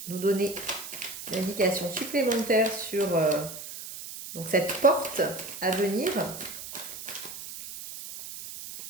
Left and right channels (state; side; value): noise; right; hiss, 11 dB below the sound